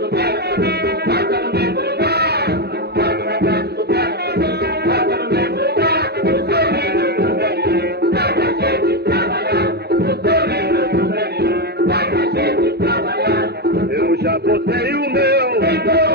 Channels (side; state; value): left; late; 0.47 ms